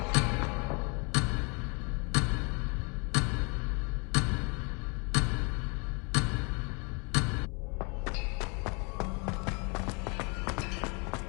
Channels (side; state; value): right; quieter; 32.7 dB